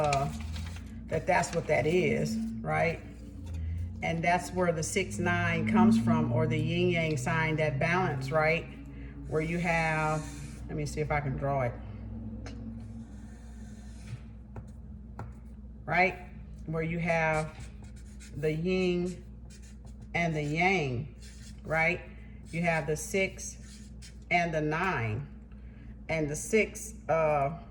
That's what that is, right? And that's where the 6-9 comes from, or the yin yang sign, that balance, right? Where you have, let me see if I can draw it. Right? Where you have the yin and the yang, right? You have the 6 and the 9. And the 6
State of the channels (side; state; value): both; identical; correlation 1.00